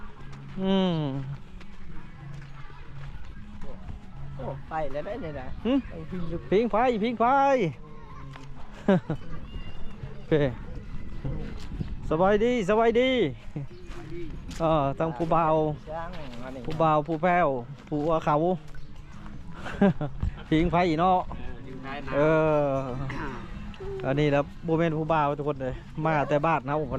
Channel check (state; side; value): identical; both; correlation 1.00